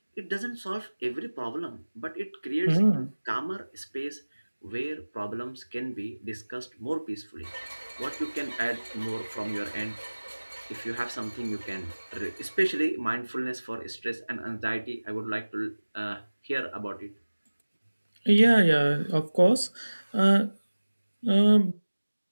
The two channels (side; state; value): both; inverted; correlation -1.00